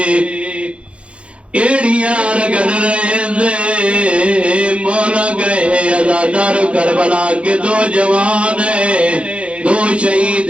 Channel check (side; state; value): left; late; 0.060 ms